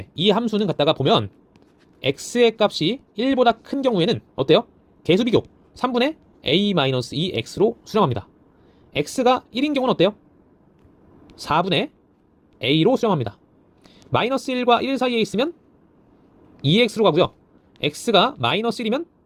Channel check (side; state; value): both; identical; correlation 1.00